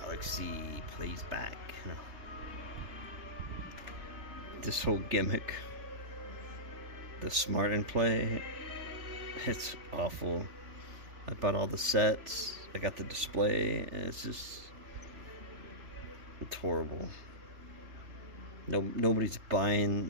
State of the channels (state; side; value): late; left; 3.4 ms